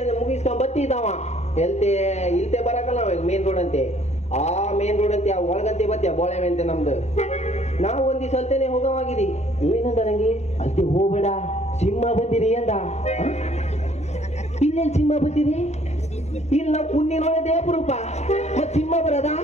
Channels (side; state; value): right; late; 0.32 ms